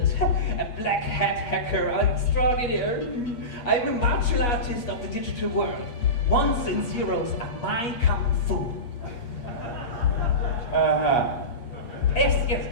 a black hat hacker, extraordinary. I'm a martial artist of the digital world. Ones and zeros are my kung fu. Yes.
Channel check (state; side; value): late; right; 8.4 ms